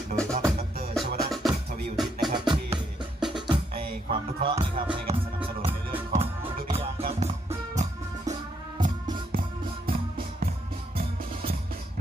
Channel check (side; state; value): both; normal; correlation 0.74